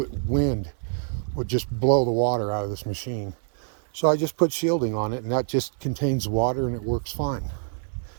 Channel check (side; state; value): left; silent; digital silence